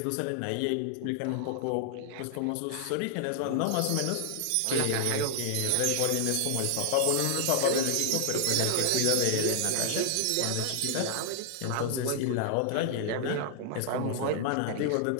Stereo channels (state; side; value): different; both; correlation 0.00